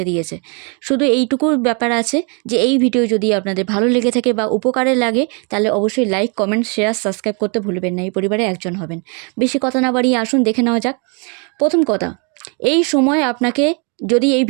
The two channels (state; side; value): quieter; left; 35.5 dB